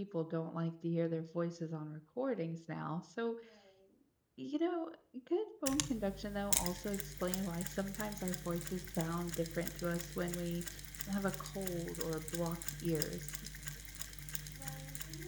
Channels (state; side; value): identical; both; correlation 1.00